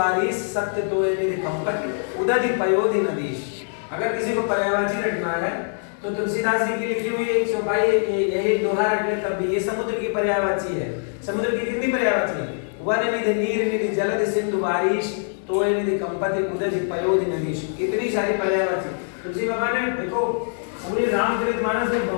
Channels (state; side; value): silent; right; digital silence